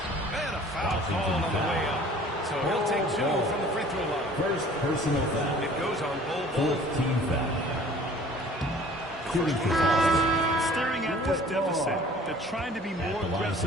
And a foul called on the way up. So he'll take 2 from the free throw line. First personal foul. It goes on Bull. Fourth team foul. Staring at this deficit, they're trying to be more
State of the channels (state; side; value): normal; both; correlation 0.50